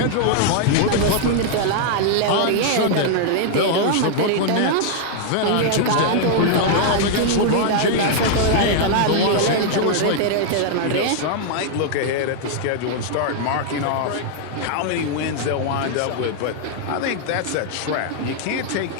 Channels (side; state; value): both; different; correlation -0.01